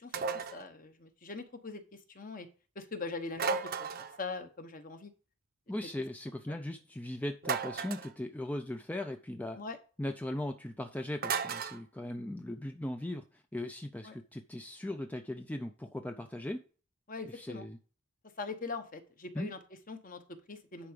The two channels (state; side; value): normal; both; correlation 0.39